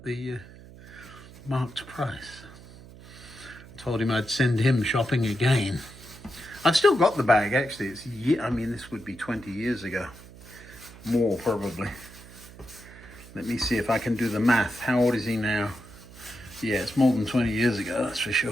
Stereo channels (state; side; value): noise; right; hum, 19 dB below the sound